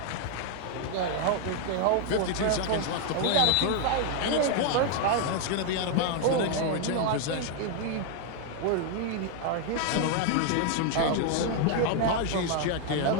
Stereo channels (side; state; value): both; different; correlation 0.01